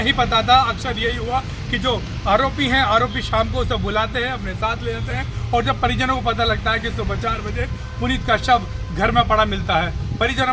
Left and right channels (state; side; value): identical; both; correlation 1.00